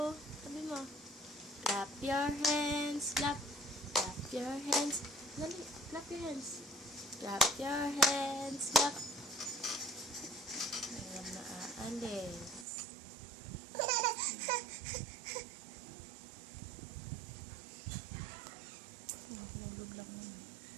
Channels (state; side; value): drops out; left; at 12.7 s